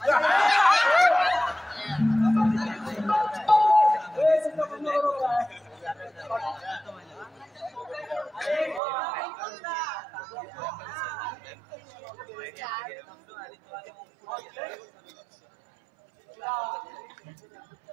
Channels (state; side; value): drops out; left; at 8.8 s